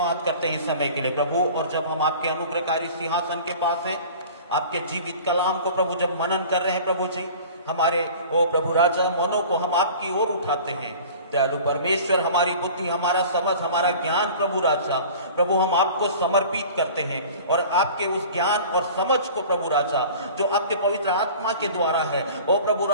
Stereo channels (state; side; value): inverted; both; correlation -0.42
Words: करते हैं इस समय के लिए प्रभु। और जब हम आपके अनुग्रहकारी सिंहासन के पास हैं, आपके जीवित कलाम को प्रभु जब मनन कर रहे हैं प्रभु जी, हमारे ओ प्रभु राजा मनों को हम आपकी ओर उठाते हैं। दयालु परमेश्वर, हमारी बुद्धि, हमारा समझ, हमारा ज्ञान प्रभु राजा, प्रभु हम आपको समर्पित करते हैं। और आपके उस ज्ञान और समझ को प्रभु राजा जो आपके पवित्र आत्मा के द्वारा है, ओ प्रभु